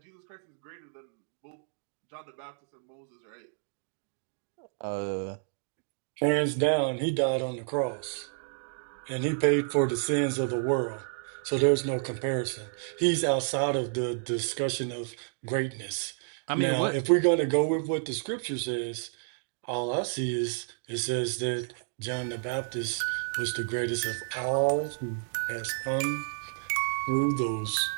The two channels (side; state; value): left; silent; digital silence